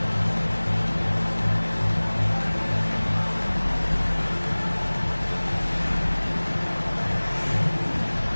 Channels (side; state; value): both; inverted; correlation -1.00